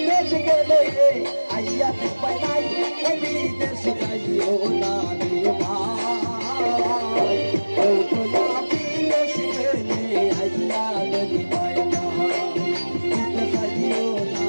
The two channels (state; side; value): inverted; both; correlation -1.00